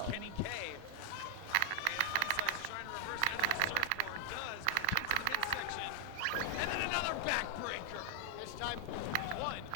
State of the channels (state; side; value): different; both; correlation 0.00